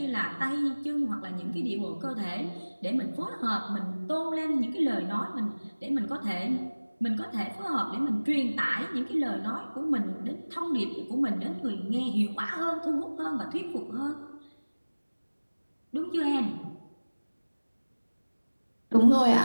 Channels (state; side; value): inverted; both; correlation -1.00